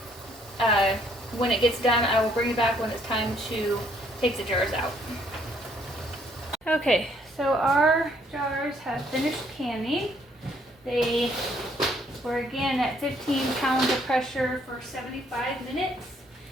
when it gets done, I will bring it back when it's time to take the jars out. Okay, so our jars have finished canning. They were again at 15 pounds of pressure for 75 minutes.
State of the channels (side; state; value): both; normal; correlation 0.67